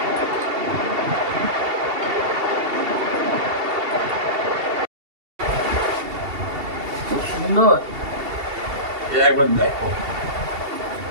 খুব সুন্দর। একবার দেখো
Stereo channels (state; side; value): late; left; 2.7 ms